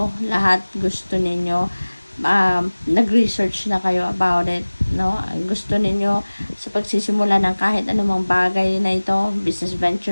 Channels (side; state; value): both; inverted; correlation -1.00